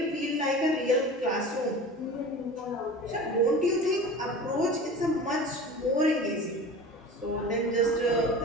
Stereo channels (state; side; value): normal; both; correlation 0.36